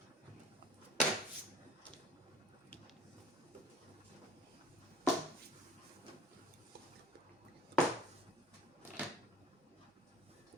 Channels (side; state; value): both; normal; correlation 0.46